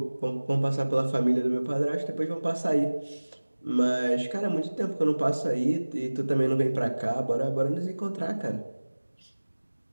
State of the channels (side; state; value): both; inverted; correlation -1.00